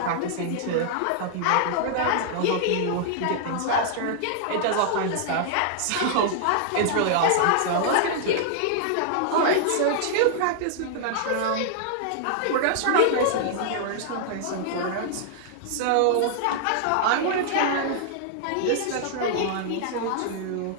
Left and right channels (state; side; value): different; both; correlation -0.01